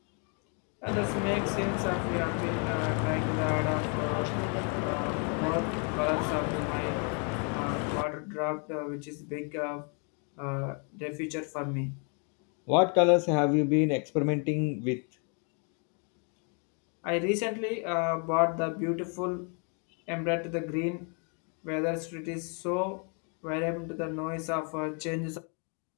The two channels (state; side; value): quieter; right; 38.2 dB